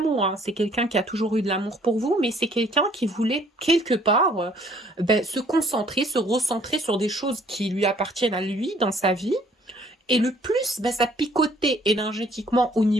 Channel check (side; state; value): both; normal; correlation 0.60